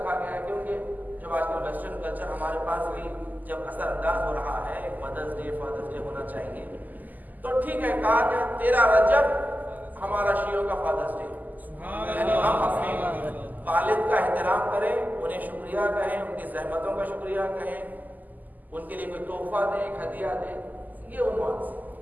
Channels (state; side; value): late; left; 0.083 ms